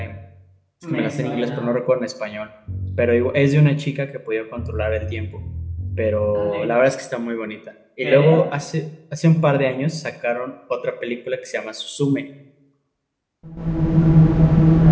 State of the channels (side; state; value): both; identical; correlation 1.00